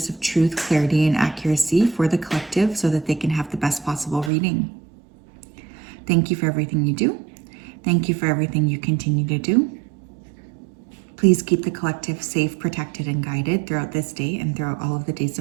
of truth, clarity, and accuracy for the collective so that they can have the best possible reading. Thank you for everything you do. Thank you for everything you continue to do. Please keep the collective safe, protected, and guided throughout this day and throughout all of the days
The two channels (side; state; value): left; drops out; at 4.3 s